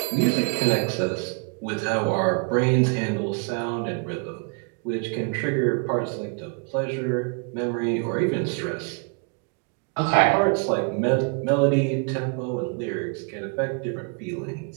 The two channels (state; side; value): quieter; left; 36.9 dB